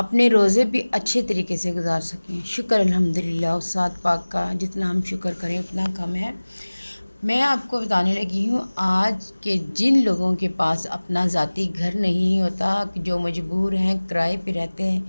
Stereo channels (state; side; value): inverted; both; correlation -1.00